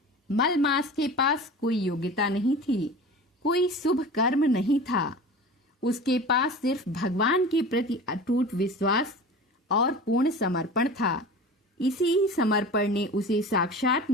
मलमास के पास कोई योग्यता नहीं थी, कोई शुभ कर्म नहीं था। उसके पास सिर्फ भगवान के प्रति अटूट विश्वास और पूर्ण समर्पण था। इसी समर्पण ने उसे साक्षात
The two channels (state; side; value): normal; both; correlation 0.36